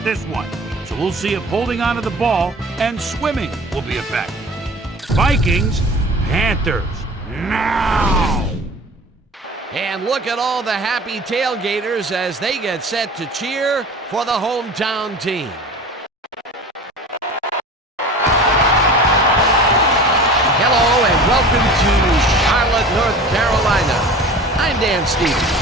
this one. So we'll see if holding onto the ball and swimming will be effective. Vikings, Panthers, now! And look at all the happy tailgaters as they get set to cheer for the hometown team. Hello and welcome to Charlotte, North Carolina. I'm Dan Stevens.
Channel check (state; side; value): normal; both; correlation 0.39